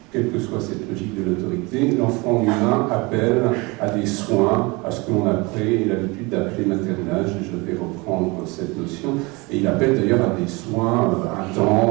Quelle que soit cette logique de l'autorité, l'enfant humain appelle à des soins, à ce que l'on a pris l'habitude d'appeler maternage, et je vais reprendre cette notion, et il appelle d'ailleurs à des soins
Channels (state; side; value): quieter; left; 25.9 dB